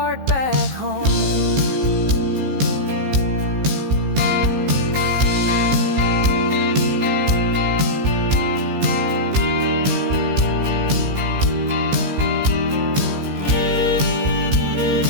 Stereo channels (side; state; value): left; late; 15 ms